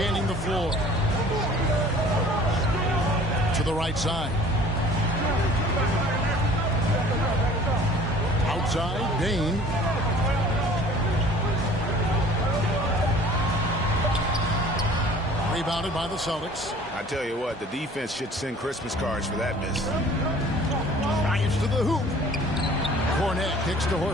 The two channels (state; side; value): normal; both; correlation 0.48